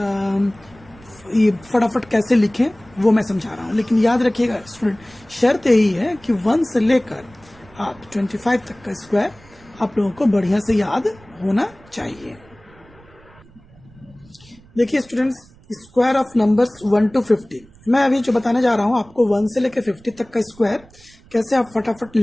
ये फटाफट कैसे लिखें वो मैं समझा रहा हूँ। लेकिन याद रखिएगा स्टूडेंट, शर्त यही है कि 1 से लेकर आप 25 तक का स्क्वायर आप लोगों को बढ़िया से याद होना चाहिए। देखिए students, square of numbers 1 to 50 मैं अभी जो बताने जा रहा हूँ आपको 1 से लेकर 50 तक का स्क्वायर कैसे आप फटाफट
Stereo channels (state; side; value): noise; right; rumble, 26 dB below the sound